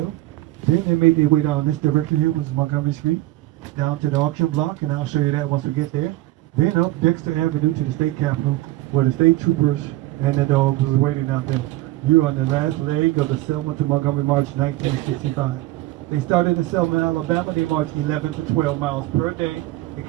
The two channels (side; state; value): left; quieter; 17.0 dB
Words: then they made their way down this direction here, which is Montgomery Street, down to the auction block, and I'll show you that once we get there. Then up Dexter Avenue to the state capitol, where the state troopers and the dogs was waiting out there. You're on the last leg of the Selma to Montgomery March 1965. They started in Selma, Alabama. They marched 11 to 12 miles per day. They